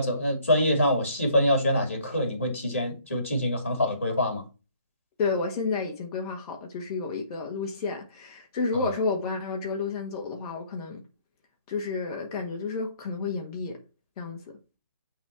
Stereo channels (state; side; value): inverted; both; correlation -0.59